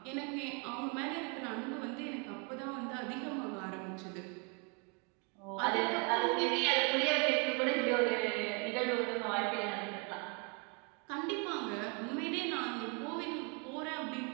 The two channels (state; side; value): quieter; left; 34.5 dB